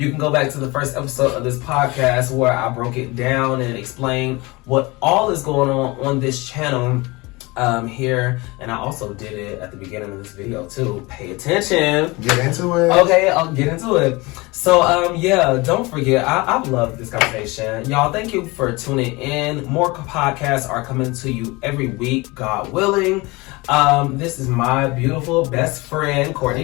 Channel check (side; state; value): right; quieter; 23.9 dB